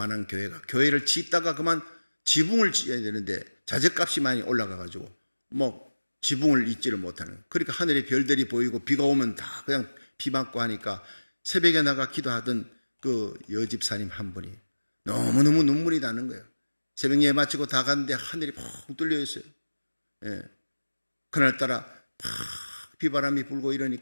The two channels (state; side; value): inverted; both; correlation -1.00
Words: 교회가 교회를 짓다가 그만 지붕을 지어야 되는데 자재값이 많이 올라가가지고 지붕을 잇지를 못하는, 그러니까 하늘에 별들이 보이고 비가 오면 다 그냥 비 맞고 하니까 새벽에 나가 기도하던 그 여집사님 한 분이 너무너무 눈물이 나는 거예요. 새벽 예배 마치고 다 갔는데 하늘이 펑 뚫려 있어요. 예. 그날따라 팍 비바람이 불고